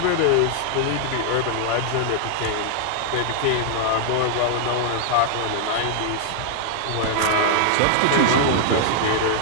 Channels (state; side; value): different; both; correlation 0.00